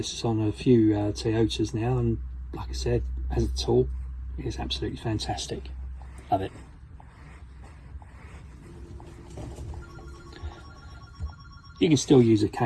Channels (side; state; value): both; identical; correlation 1.00